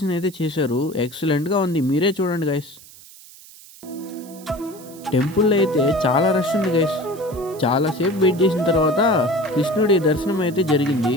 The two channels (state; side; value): noise; right; hiss, 21 dB below the sound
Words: అయితే చేశారు, ఎక్సలెంట్గా ఉంది. మీరే చూడండి గాయస్. టెంపుల్లో అయితే చాలా రష్ ఉంది గాయస్. చాలాసేపు వెయిట్ చేసిన తర్వాత కృష్ణుడి దర్శనం అయితే జరిగింది.